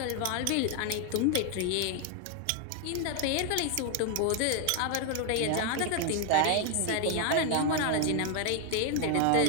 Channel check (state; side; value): different; both; correlation 0.00